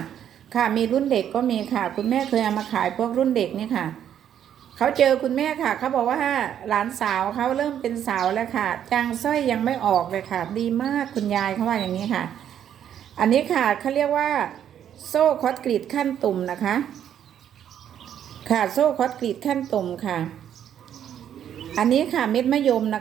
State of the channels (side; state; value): left; quieter; 9.8 dB